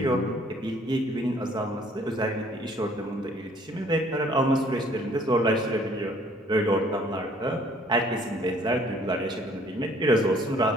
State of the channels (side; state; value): both; normal; correlation 0.58